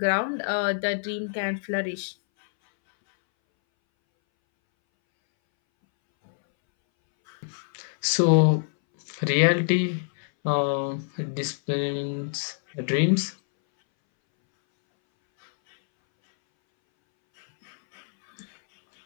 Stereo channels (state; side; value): silent; right; 61 dB below the other